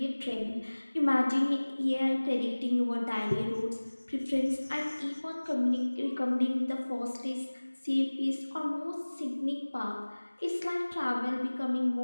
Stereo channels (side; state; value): both; inverted; correlation -1.00